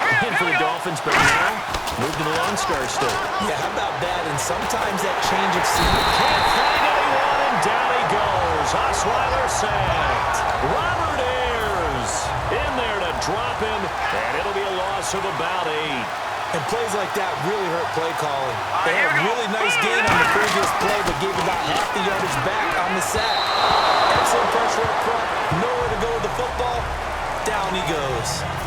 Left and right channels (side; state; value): both; identical; correlation 1.00